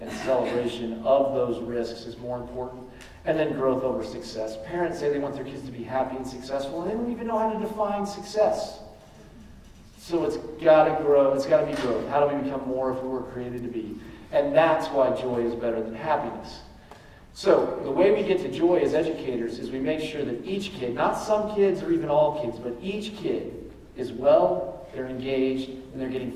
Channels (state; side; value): identical; both; correlation 1.00